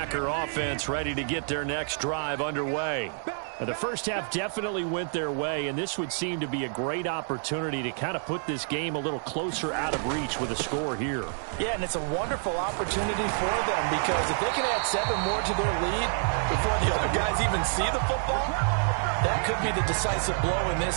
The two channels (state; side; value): silent; left; 59 dB below the other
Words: offense ready to get their next drive underway. The first half definitely went their way, and this would seem to be a great opportunity to kind of put this game a little closer out of reach with a score here. Yeah, and it's a wonderful opportunity for them because if they can add 7 more to their lead before the other guys even see the football, that could be the decisive blow in